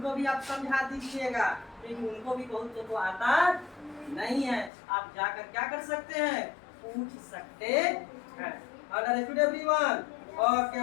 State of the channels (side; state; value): right; drops out; at 4.7 s